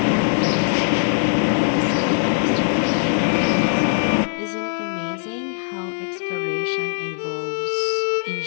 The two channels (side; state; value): right; silent; digital silence